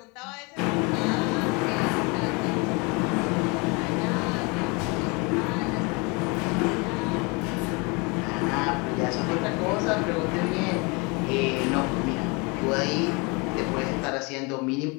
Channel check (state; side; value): quieter; right; 29.1 dB